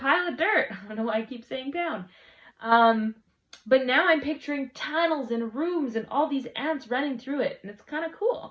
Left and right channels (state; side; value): identical; both; correlation 1.00